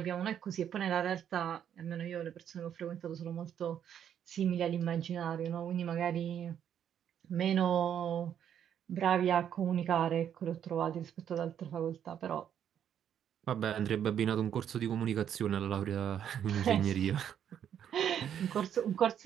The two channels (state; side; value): quieter; left; 9.3 dB